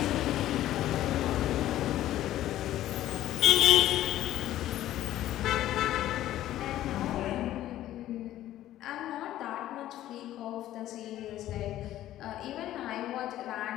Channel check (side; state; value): right; quieter; 13.5 dB